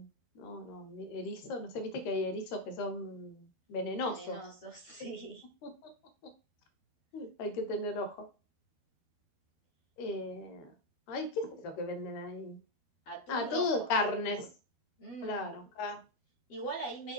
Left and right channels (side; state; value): right; late; 13 ms